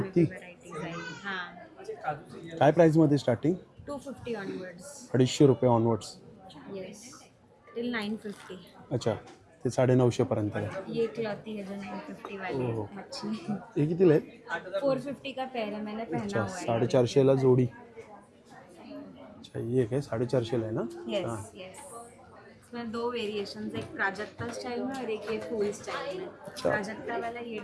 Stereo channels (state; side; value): identical; both; correlation 1.00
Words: काय प्राईसमध्ये स्टार्टिंग? 250 ऑनवर्ड्स. 250 रुपये ऑनवर्ड्स. Yes till 950. अच्छा ते 950 पर्यंत आहे. ये क्लॉथी है जो 950 वाली ओहो. मच्छी. हे कितीला आहेत? 450 का पेयर है, मैंने पहना अच्छा हुआ है. 450ला जोडी. अच्छा ये काय 450ला आहे ना? यस हां. यस. इसमें दो वेरिएशंस, एक प्राजक्ता स्टाइल में और एक ये फुल स्टाइल में. अच्छा. प्राजक्ता वाला ये